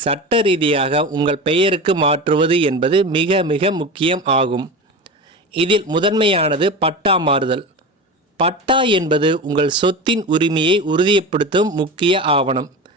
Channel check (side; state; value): both; normal; correlation 0.27